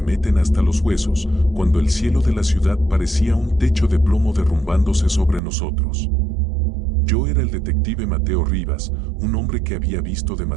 meten hasta los huesos, cuando el cielo de la ciudad parecía un techo de plomo derrumbándose sobre nosotros. Yo era el detective Mateo Rivas, un hombre que había visto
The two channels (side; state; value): left; drops out; at 5.4 s